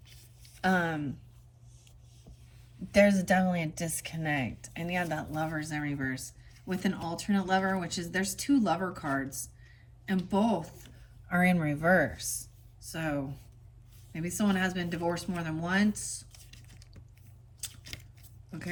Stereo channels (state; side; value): identical; both; correlation 1.00